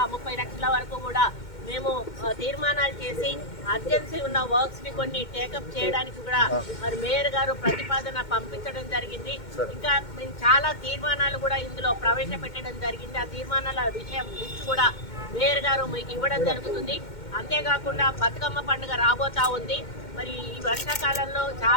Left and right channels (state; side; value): late; right; 2.1 ms